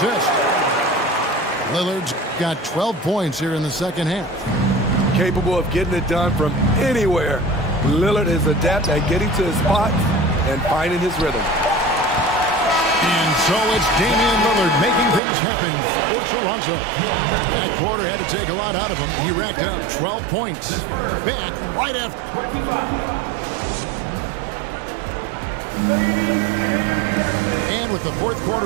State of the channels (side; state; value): left; drops out; at 15.2 s